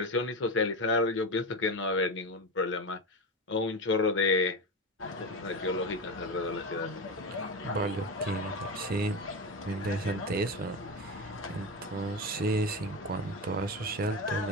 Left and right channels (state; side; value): normal; both; correlation 0.19